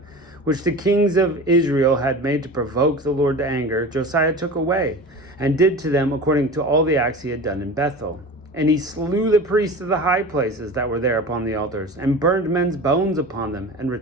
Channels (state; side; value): normal; both; correlation 0.34